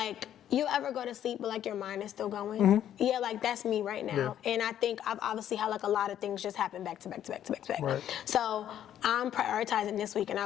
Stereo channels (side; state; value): right; quieter; 10.7 dB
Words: you ever go to sleep but like your mind is still going? Yeah, like that's me right now. And I think I've obviously had like a lot of things just happen back to back to back to back to back. So I'm prioritizing this week, and